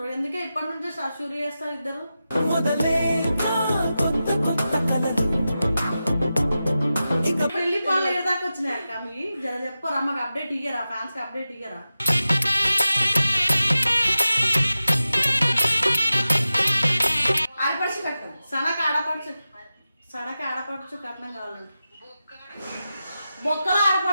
ఎందుకే ఇప్పటి నుంచే షూరి చేస్తారు ఇద్దరు. పెళ్లి పనులు ఏదాకా వచ్చినాయి అక్క మీ జర చెప్పరా, మాకు అప్డేట్ ఇయ్యరా, ఫ్యాన్స్ కి అప్డేట్ ఇయ్యరా. ఆడపడుచు కట్టం సడక ఆడపడుచు కట్నం కావాలండి. బొక్కలు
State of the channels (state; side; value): inverted; both; correlation -0.92